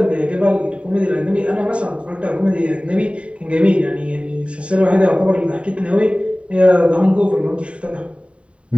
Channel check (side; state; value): left; late; 0.061 ms